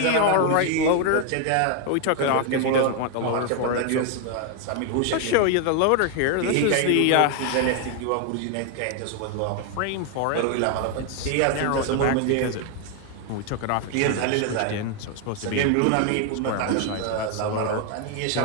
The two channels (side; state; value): both; different; correlation 0.00